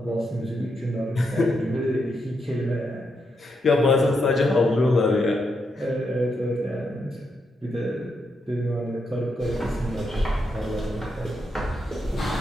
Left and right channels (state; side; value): normal; both; correlation 0.82